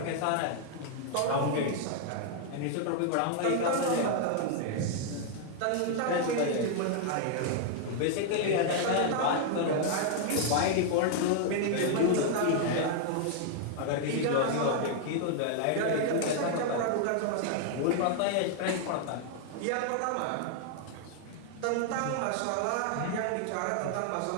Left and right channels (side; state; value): both; different; correlation 0.00